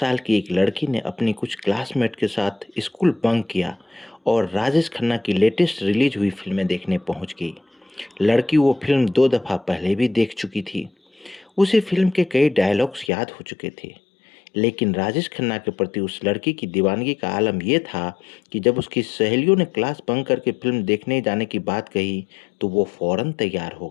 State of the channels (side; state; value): right; drops out; at 13.1 s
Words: की एक लड़की ने अपनी कुछ क्लासमेट के साथ स्कूल बंक किया और राजेश खन्ना की लेटेस्ट रिलीज हुई फिल्में देखने पहुंच गई। लड़की वो फिल्म 2 दफ़ा पहले भी देख चुकी थी। उसे फिल्म के कई डायलॉग्स याद हो चुके थे। लेकिन राजेश खन्ना के प्रति उस लड़की की दीवानगी का आलम यह था कि जब उसकी सहेलियों ने क्लास बंक करके फिल्म देखने जाने की बात कही, तो वो फौरन तैयार हो